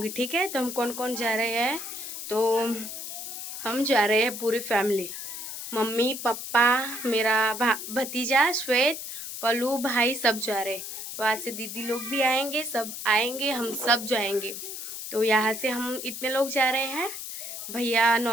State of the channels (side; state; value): left; noise; hiss, 8 dB below the sound